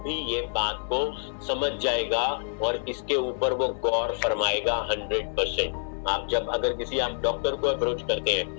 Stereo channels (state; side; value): silent; right; 60 dB below the other